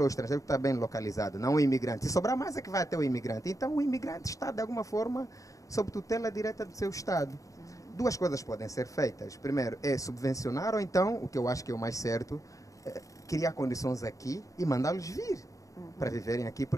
o estrangeiro que está bem localizado, não o imigrante. Se sobrar mais é que vai até o imigrante. Então o imigrante está, de alguma forma, sob tutela direta do seu Estado. Duas coisas podem ser feitas. Primeiro, é subvencionar ou então, o que eu acho que é o mais certo, criar condições aqui e mandá-los vir para viverem aqui.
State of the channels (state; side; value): late; right; 0.16 ms